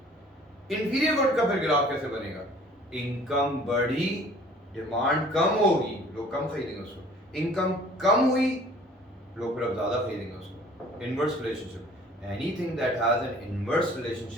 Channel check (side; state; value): both; normal; correlation 0.52